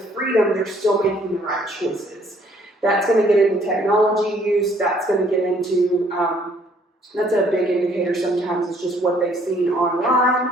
freedom, they're still making the right choices. That's going to get into technology use. That's going to get into That's a big indicator sometimes, is just what they've seen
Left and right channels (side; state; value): both; normal; correlation 0.63